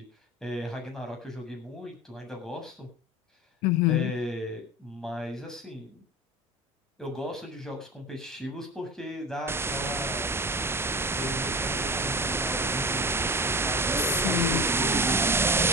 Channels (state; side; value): normal; both; correlation 0.30